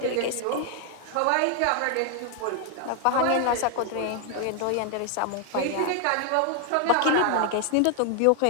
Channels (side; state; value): both; different; correlation 0.00